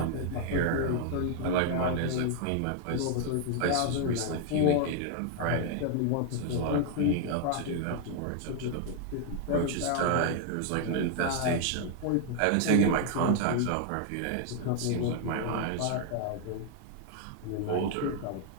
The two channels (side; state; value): both; different; correlation 0.00